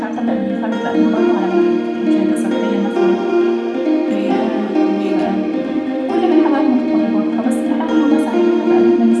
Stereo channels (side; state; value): both; identical; correlation 1.00